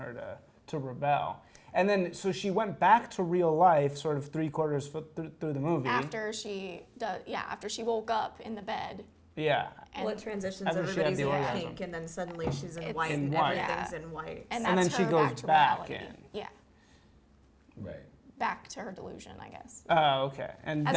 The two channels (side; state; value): both; identical; correlation 1.00